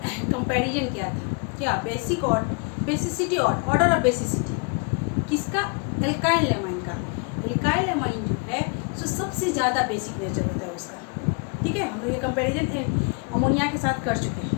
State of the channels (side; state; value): right; quieter; 34.0 dB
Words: कंपैरिजन किया था। क्या बेसिक और बेसिसिटी और ऑर्डर ऑफ बेसिसिटी किसका, एल्काइल एमाइन का। एल्काइल एमाइन जो है जो सबसे ज़्यादा बेसिक नेचर होता है उसका। ठीक है, हम लोग ये कंपेरिजन अमोनिया के साथ कर चुके हैं।